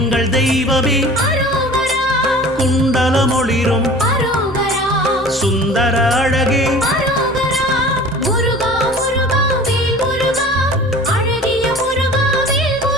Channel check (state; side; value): normal; both; correlation 0.42